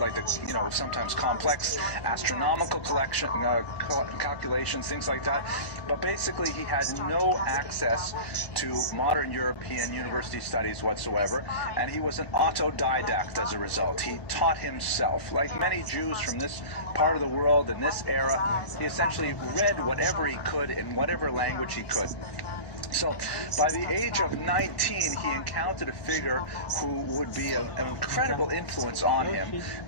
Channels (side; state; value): right; late; 1.2 ms